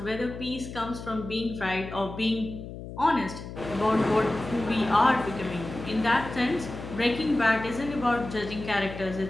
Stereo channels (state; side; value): noise; left; hum, 11 dB below the sound